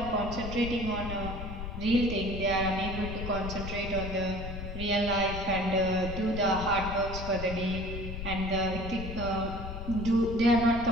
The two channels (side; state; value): left; noise; rumble, 7 dB below the sound